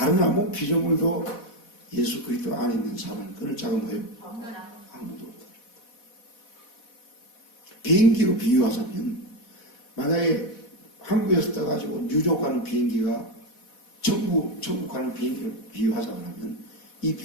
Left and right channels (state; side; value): late; right; 4.1 ms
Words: 아무 피조물도 예수 그리스도 안에 있는 사람을 끊을 자가 뭐예요? 아무도 없다. 비행기로 비유하자면 만약에 한국에서 떠가지고 뉴욕 가는 비행기가 천국 가는 비행기를 비유하자 그러면 이